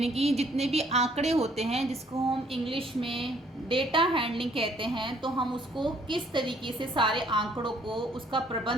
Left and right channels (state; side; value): normal; both; correlation 0.63